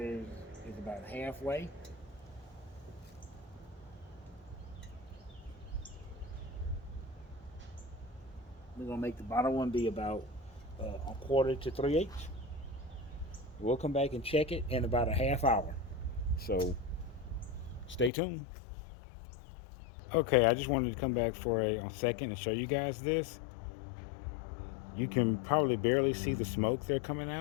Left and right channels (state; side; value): drops out; right; at 18.1 s